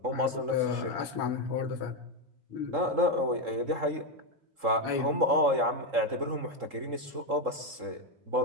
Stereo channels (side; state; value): left; late; 3.8 ms